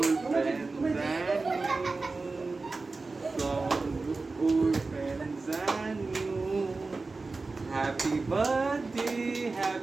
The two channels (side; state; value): left; quieter; 3.8 dB